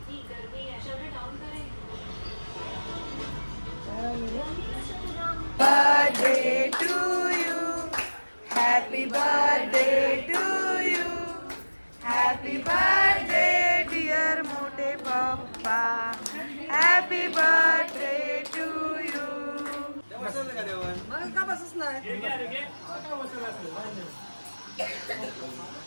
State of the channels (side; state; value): both; inverted; correlation -1.00